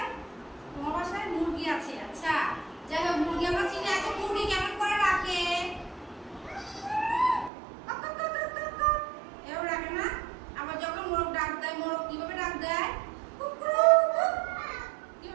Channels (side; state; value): left; drops out; at 7.5 s